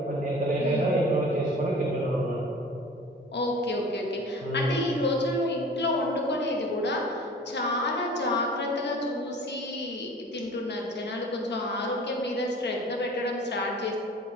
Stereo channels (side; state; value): both; normal; correlation 0.43